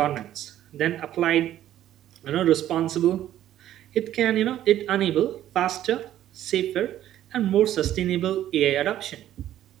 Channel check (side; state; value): left; quieter; 12.3 dB